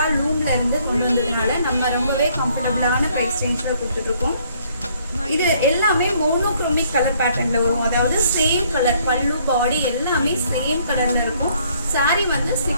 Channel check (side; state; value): both; inverted; correlation -0.65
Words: லூம்ல இருந்து கொண்டு வந்ததுனால நம்ம ரொம்பவே கம்ஃபர்டபுளான ப்ரைஸ் ரேஞ்ச்ல கொடுத்துட்டு இருக்கோம். இது எல்லாமே மோனோக்ரோமிக் கலர் பேட்டர்ன்ல வரும், அதாவது சேம் கலர், பல்லு பாடி எல்லாமே சேம் கலர்ல இருக்கும். சாரி வந்து